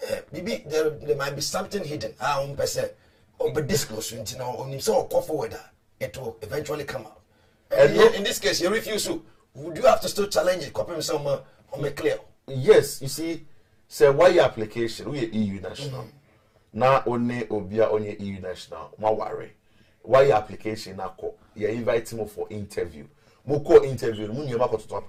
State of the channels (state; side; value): identical; both; correlation 1.00